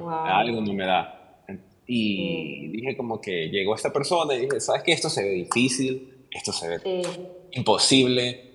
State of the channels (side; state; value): both; identical; correlation 1.00